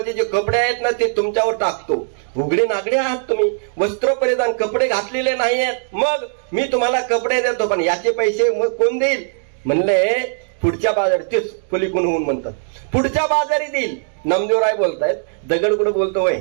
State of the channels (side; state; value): left; silent; digital silence